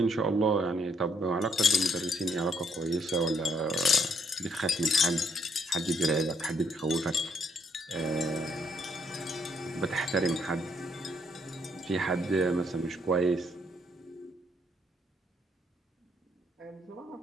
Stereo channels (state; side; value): normal; both; correlation 0.71